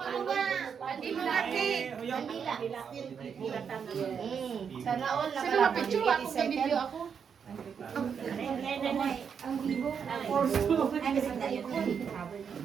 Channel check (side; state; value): left; quieter; 6.9 dB